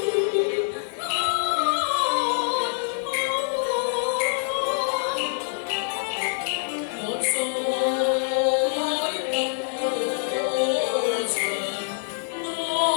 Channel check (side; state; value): right; silent; digital silence